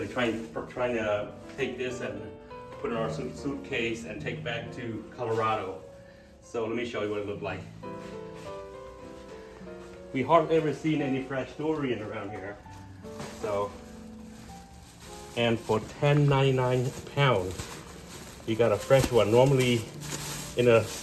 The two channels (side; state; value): both; identical; correlation 1.00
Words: try to take this and put it in our suitcase and take back to Colorado. So let me show you what it looked like. We hardly ever seen any fresh durian around here. So, and for $10.99 a pound, you got a fresh one. Normally in a